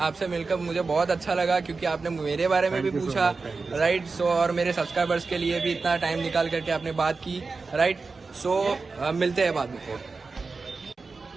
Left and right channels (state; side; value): quieter; left; 4.2 dB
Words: मिलकर मुझे बहुत अच्छा लगा, क्योंकि आपने मेरे बारे में भी पूछा। राइट, सो और मेरे सब्सक्राइबर्स के लिए भी इतना टाइम निकाल करके आपने बात की। राइट, सो मिलते हैं बाद में।